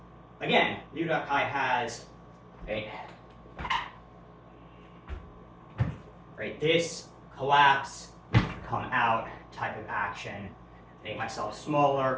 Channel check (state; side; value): identical; both; correlation 1.00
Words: again, liu da kai has right, this collapse, come out type of action, make myself